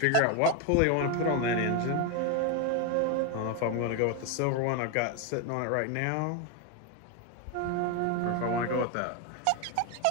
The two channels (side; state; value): both; different; correlation 0.01